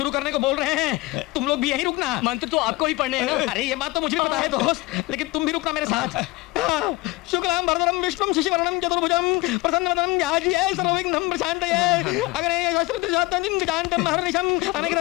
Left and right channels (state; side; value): quieter; right; 20.8 dB